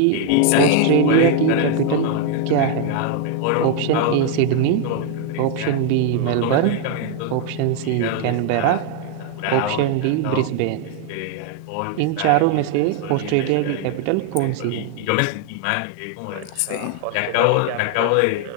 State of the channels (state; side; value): different; both; correlation 0.00